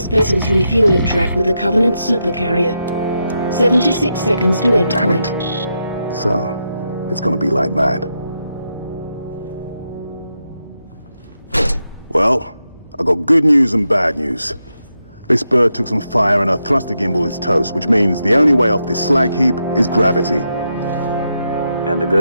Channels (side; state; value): both; inverted; correlation -0.85